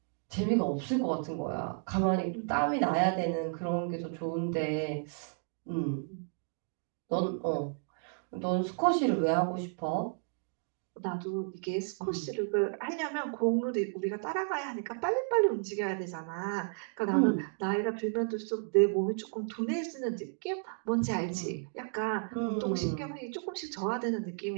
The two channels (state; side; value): silent; left; 56 dB below the other